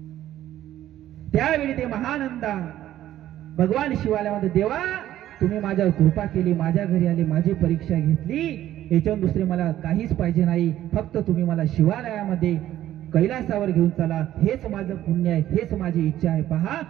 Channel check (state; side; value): quieter; left; 12.9 dB